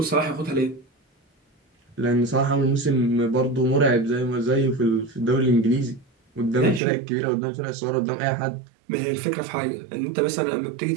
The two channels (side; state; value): left; drops out; at 6.8 s